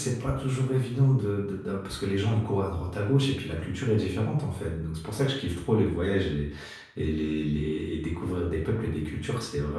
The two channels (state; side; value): identical; both; correlation 1.00